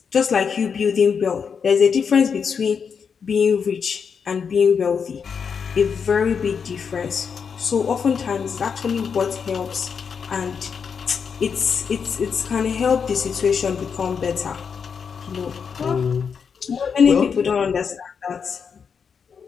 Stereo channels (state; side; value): quieter; right; 6.4 dB